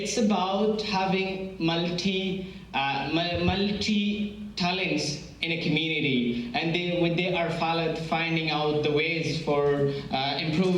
about having multi talents in a community, and they are finding out the ways for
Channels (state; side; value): identical; both; correlation 1.00